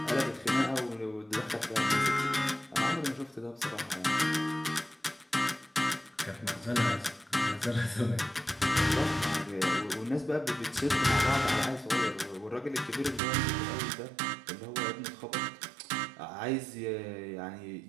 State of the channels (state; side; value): drops out; left; at 13.2 s